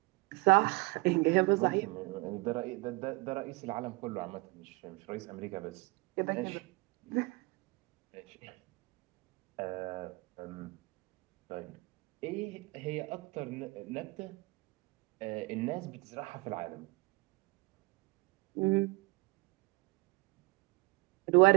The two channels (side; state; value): left; quieter; 25.4 dB